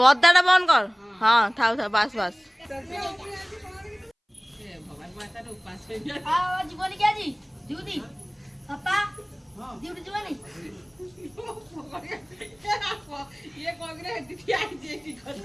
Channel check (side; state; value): both; identical; correlation 1.00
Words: बंद कर हाँ थाउ था बस बस জীবনে কি আজি ডিউটি পাপা ডিউটি জীবনে ये कांग्रेस दीदी आई जे की